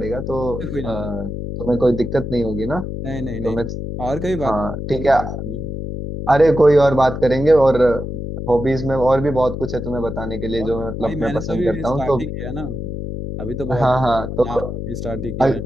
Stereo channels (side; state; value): left; noise; hum, 5 dB below the sound